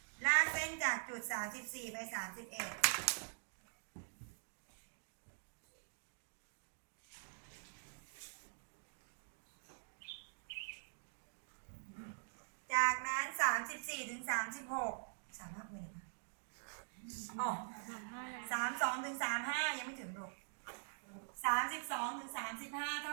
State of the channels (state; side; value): silent; left; digital silence